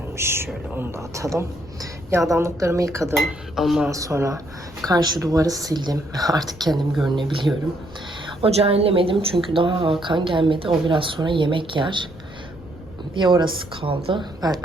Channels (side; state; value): left; noise; rumble, 20 dB below the sound